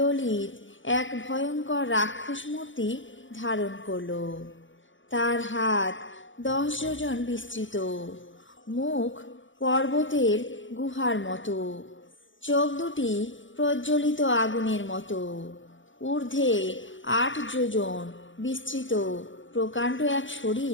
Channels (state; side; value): late; right; 0.56 ms